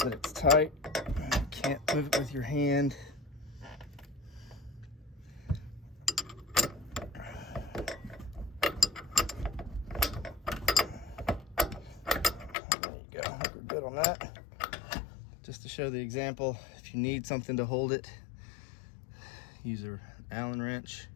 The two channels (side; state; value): right; drops out; at 12.6 s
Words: it's tight. You can't move it with your hand. There you go. We're good on that. Just to show the example, if you need something to hold it, use an Allen wrench.